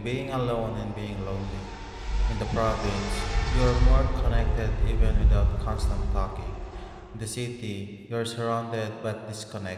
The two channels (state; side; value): identical; both; correlation 1.00